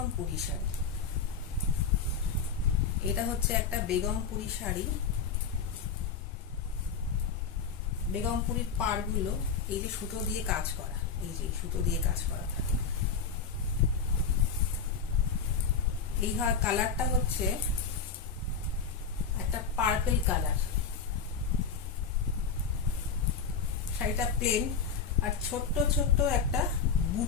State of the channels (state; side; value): quieter; right; 5.7 dB